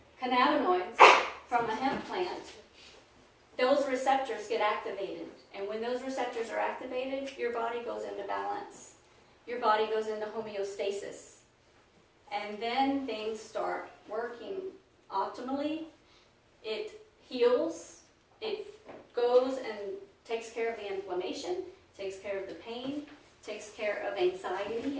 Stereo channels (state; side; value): identical; both; correlation 1.00